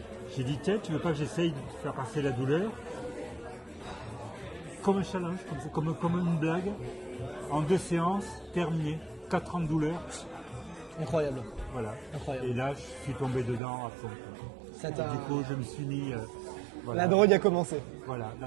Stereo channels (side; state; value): left; drops out; at 13.6 s